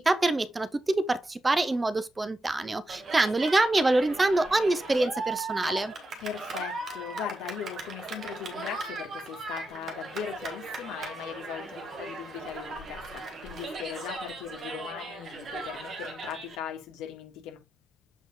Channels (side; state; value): both; normal; correlation 0.87